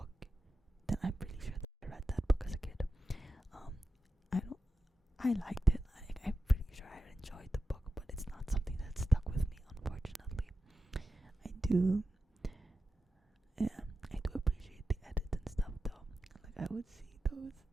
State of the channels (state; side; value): normal; both; correlation 0.90